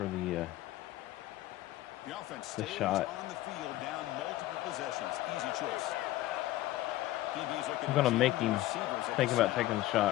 the offense stays shot. on the field, down multiple possessions. Easy choice. I'm going to make him think about taking the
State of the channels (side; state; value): right; quieter; 15.8 dB